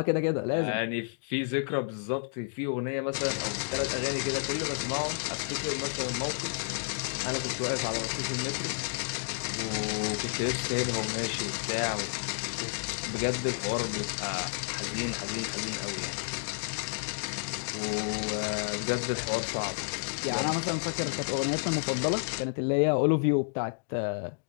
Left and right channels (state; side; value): silent; right; digital silence